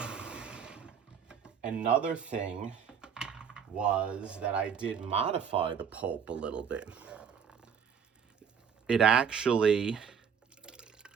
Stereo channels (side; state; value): left; quieter; 7.3 dB